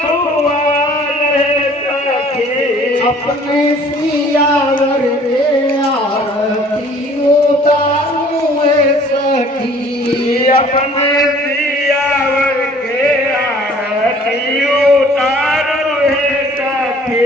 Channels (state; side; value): normal; both; correlation 0.54